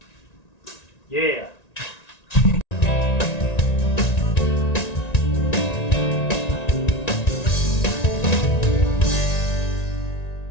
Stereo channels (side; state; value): right; late; 1.9 ms